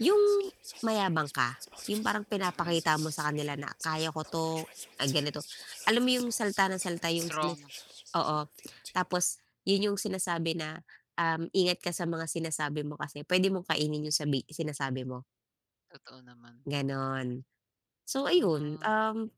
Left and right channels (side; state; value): both; identical; correlation 1.00